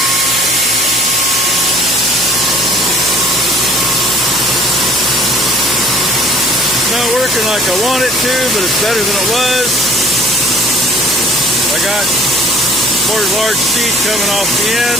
Not working like I want it to, but it's better than it was. I got more large seed coming off the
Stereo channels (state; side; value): normal; both; correlation 0.52